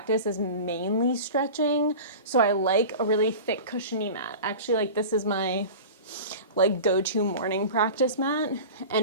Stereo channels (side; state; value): both; inverted; correlation -0.33